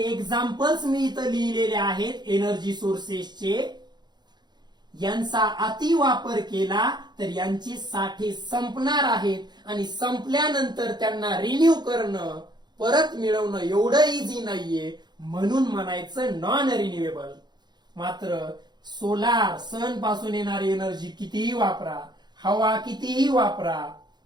एक्झाम्पल्स मी इथं लिहिलेले आहेत एनर्जी सोर्सेसचे, यांचा अति वापर केला तर यांचे साठे संपणार आहेत आणि संपल्यानंतर त्यांना रिन्यू करणं, परत मिळवणं एवढं इझी नाहीये. म्हणून म्हणायचं नॉन रिन्युएबल. मात्र सोलार, सन पासून येणारी एनर्जी कितीही वापरा, हवा कितीही वापरा,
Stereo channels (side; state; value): left; late; 0.21 ms